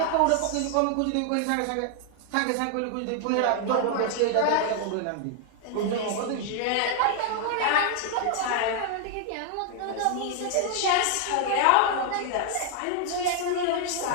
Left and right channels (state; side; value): different; both; correlation 0.00